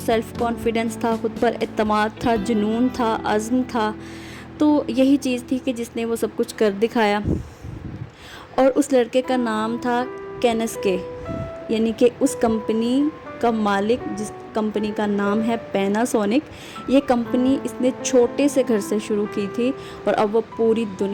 سیلف کانفیڈنس تھا، خود پر اعتماد تھا، جنون تھا، عزم تھا۔ تو یہی چیز تھی کہ جس نے وہ سب کچھ کر دکھایا، اور اس لڑکے کا نام تھا کینس کے، یعنی کہ اس کمپنی کا مالک، جس کمپنی کا نام ہے پیناسونک۔ یہ کمپنی اس نے چھوٹے سے گھر سے شروع کی تھی، اور اب وہ پوری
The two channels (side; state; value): both; identical; correlation 1.00